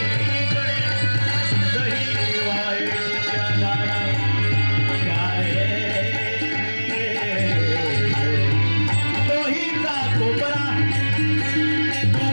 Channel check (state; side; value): inverted; both; correlation -1.00